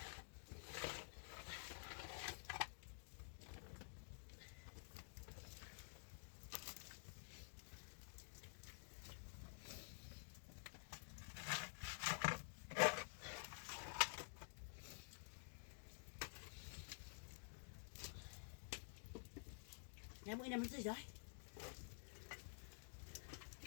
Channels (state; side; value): silent; right; digital silence